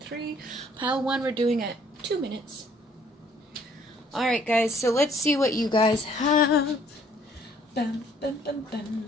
3. Pile 1 we're doing at 2 minutes. Alright guys, so let's see what you guys have. Bum, bum, bum, bum,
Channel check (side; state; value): both; normal; correlation 0.62